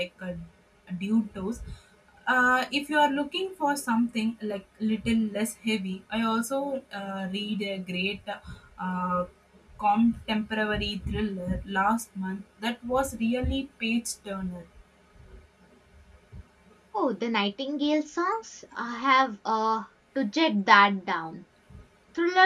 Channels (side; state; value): both; identical; correlation 1.00